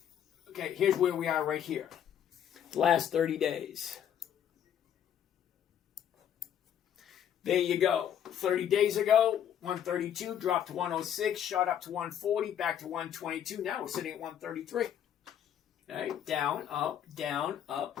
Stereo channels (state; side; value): quieter; right; 9.6 dB